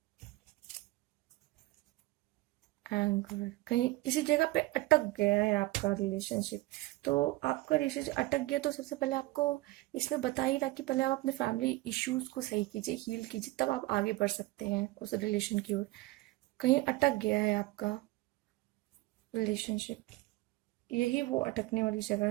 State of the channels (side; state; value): left; quieter; 19.6 dB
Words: एंगर, कहीं किसी जगह पे अटक गया है आपका रिलेशनशिप, तो आपका रिलेशनशिप अटक गया तो सबसे पहले आपको इसमें बता ही रहा कि पहले आप अपने फैमिली इश्यूज को सही कीजिए, हील कीजिए, तब आप आगे बढ़ सकते हैं उस रिलेशन की ओर। कहीं अटक गया है आपका रिलेशनशिप, यही वो अटकने वाली जगह